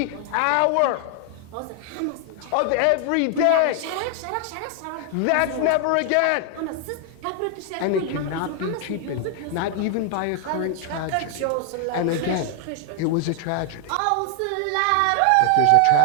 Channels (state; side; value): different; both; correlation 0.00